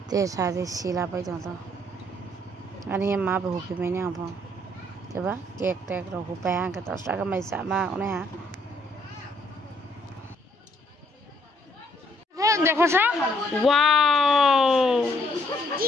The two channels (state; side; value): normal; both; correlation 0.68